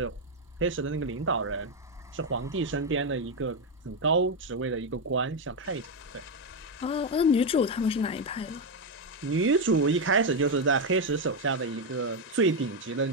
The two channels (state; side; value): normal; both; correlation 0.05